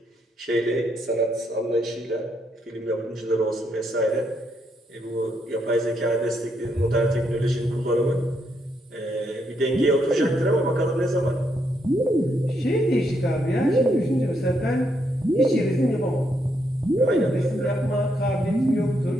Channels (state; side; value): normal; both; correlation 0.77